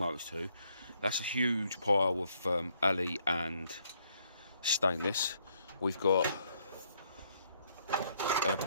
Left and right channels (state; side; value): inverted; both; correlation -0.70